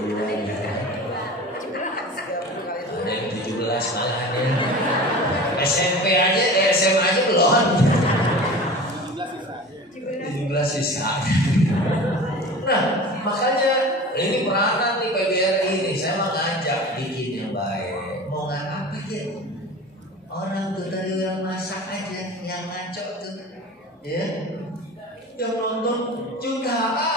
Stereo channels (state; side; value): normal; both; correlation 0.36